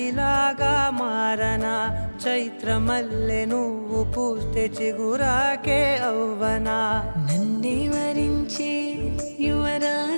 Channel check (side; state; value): both; inverted; correlation -1.00